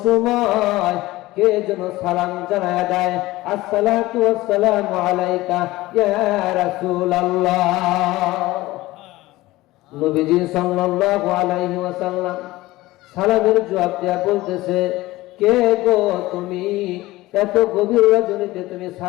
সময় কে যেন সালাম জানায় দেয়, আসসালাতু ওয়াসসালামু আলাইকা ইয়া রাসূলুল্লাহ। নবীজি সাল্লাল্লাহু আলাইহি ওয়াসাল্লাম সালামের জবাব দেয়া বলতেছে, কে গো তুমি? এত গভীর রজনীতে তুমি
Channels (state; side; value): quieter; right; 18.4 dB